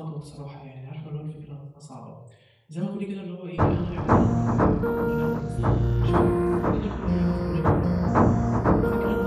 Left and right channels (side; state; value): both; identical; correlation 1.00